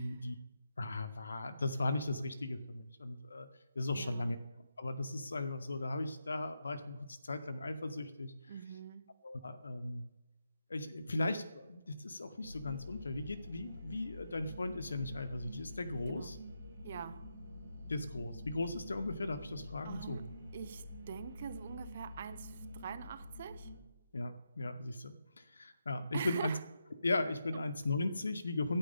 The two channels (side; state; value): both; inverted; correlation -0.85